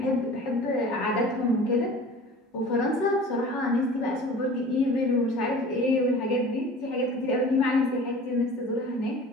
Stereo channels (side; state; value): both; normal; correlation 0.41